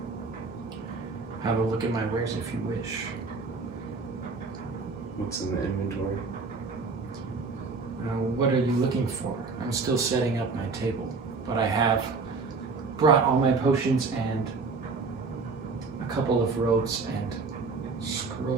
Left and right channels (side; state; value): left; quieter; 4.3 dB